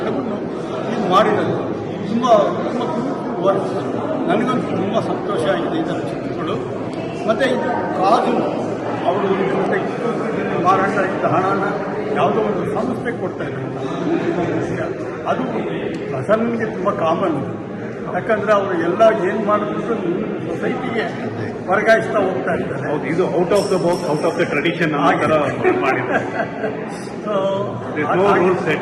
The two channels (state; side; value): identical; both; correlation 1.00